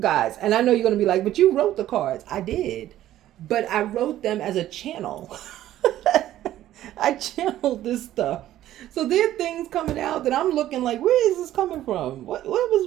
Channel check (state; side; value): quieter; left; 13.3 dB